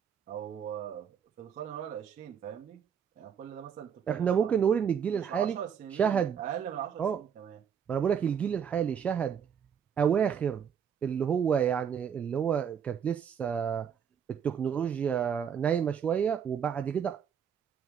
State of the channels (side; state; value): left; quieter; 7.7 dB